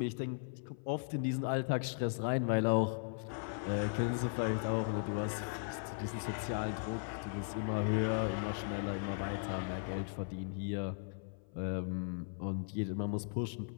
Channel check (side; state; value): right; silent; 53 dB below the other